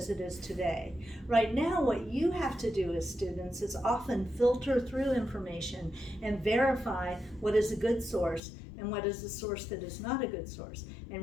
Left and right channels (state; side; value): drops out; right; at 8.4 s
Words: it is today. Right now, what you have to do as students is often filter through information and verify what is a good source and what is a source that is not a good source.